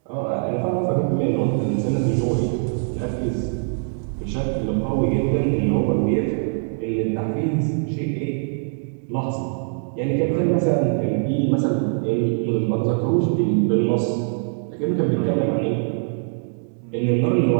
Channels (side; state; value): left; silent; digital silence